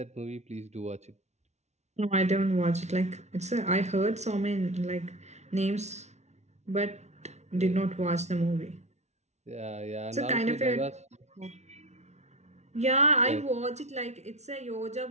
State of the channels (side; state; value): left; late; 0.32 ms